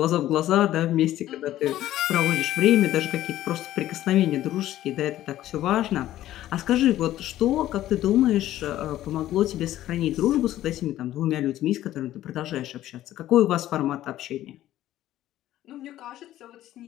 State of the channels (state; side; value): quieter; right; 13.7 dB